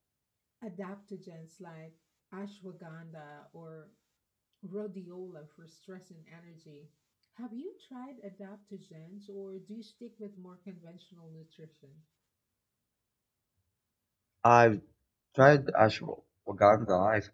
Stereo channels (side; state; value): both; identical; correlation 1.00